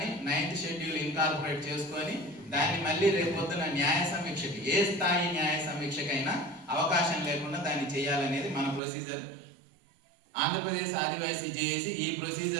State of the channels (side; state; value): left; drops out; at 8.8 s